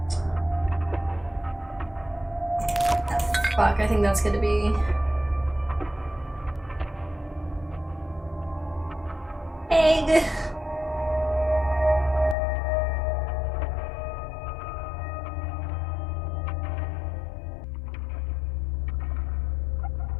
Fuck, I think that's gonna be... egg.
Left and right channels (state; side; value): drops out; right; at 12.4 s